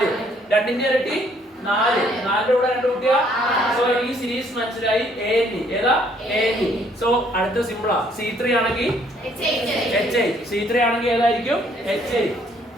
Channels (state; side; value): normal; both; correlation 0.65